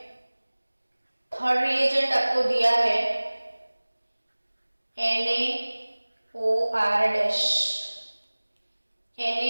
थर्ड रिएजेंट आपको दिया है NaOR-,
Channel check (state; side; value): inverted; both; correlation -1.00